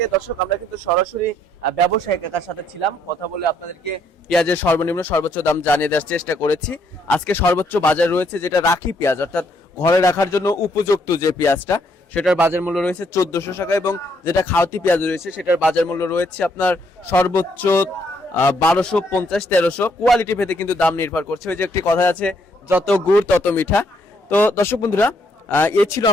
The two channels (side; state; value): both; normal; correlation 0.71